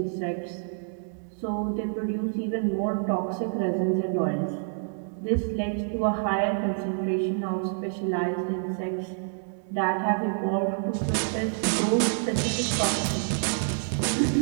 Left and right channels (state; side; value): silent; left; 60 dB below the other